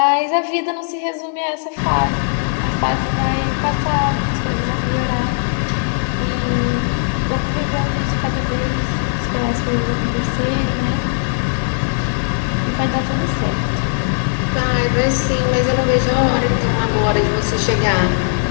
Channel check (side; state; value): right; silent; digital silence